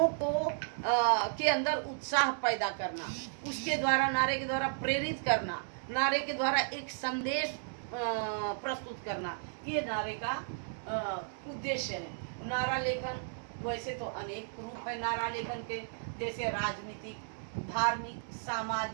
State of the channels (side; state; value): left; silent; digital silence